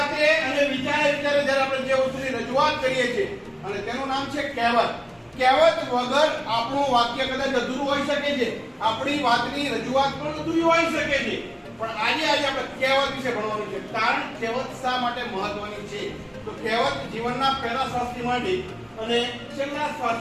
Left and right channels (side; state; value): both; identical; correlation 1.00